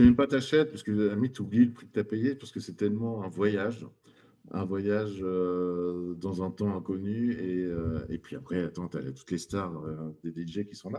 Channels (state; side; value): identical; both; correlation 1.00